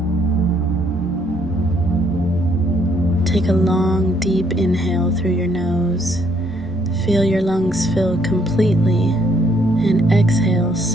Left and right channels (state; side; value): normal; both; correlation 0.68